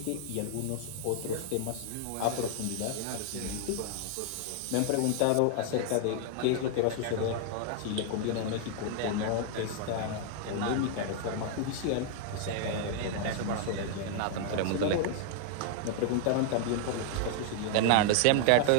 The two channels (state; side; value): different; both; correlation 0.00